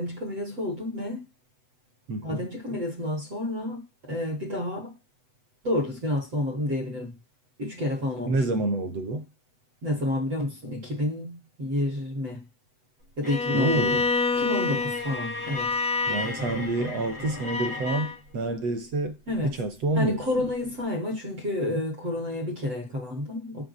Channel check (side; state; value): left; late; 7.9 ms